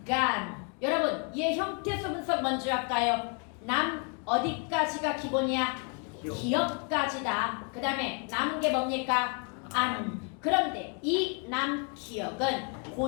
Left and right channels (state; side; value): quieter; right; 36.8 dB